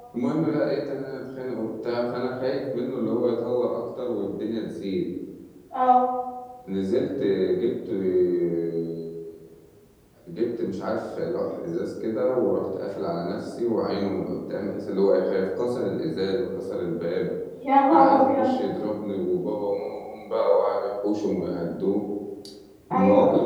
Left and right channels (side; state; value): both; identical; correlation 1.00